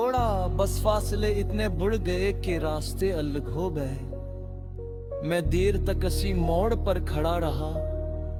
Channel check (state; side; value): identical; both; correlation 1.00